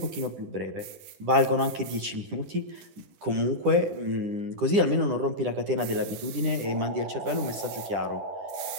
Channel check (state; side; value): late; left; 10 ms